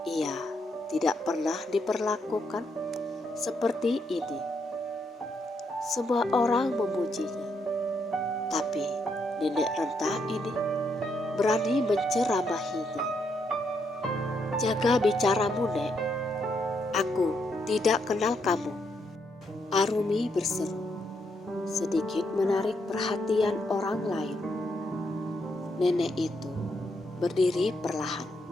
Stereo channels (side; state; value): both; normal; correlation 0.77